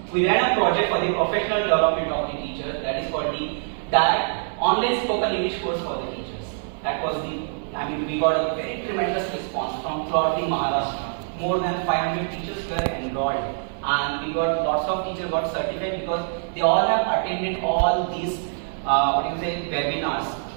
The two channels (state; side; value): silent; left; digital silence